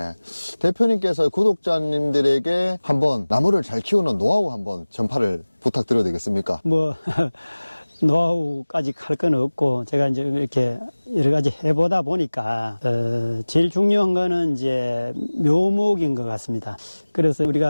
대표님께서 구독자님들에게 한번 나무를 잘 키우는 노하우 한번 전파를 부탁드려도 되겠습니까? 노하우까지 할 건 없고 제가 이제 이렇게 여러 가지 해보다 보니까 제일 중요한 거는 이제 묘목인 것 같습니다. 그래서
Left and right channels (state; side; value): inverted; both; correlation -1.00